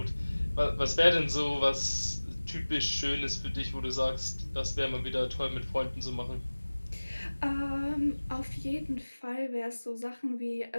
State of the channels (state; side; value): inverted; both; correlation -1.00